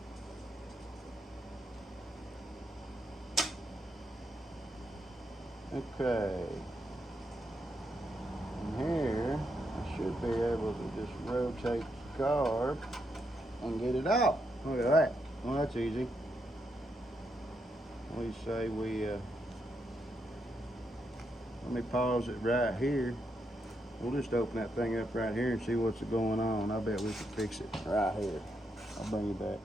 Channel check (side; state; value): both; normal; correlation 0.80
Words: Okay. And here, I should be able to just rotate the carb and get it out. Look at that. Well, that's easy. We say let me pause it right here. We'll just open that thing up right here and see what's going on. I bet we can fix it right here. I'll bring you back.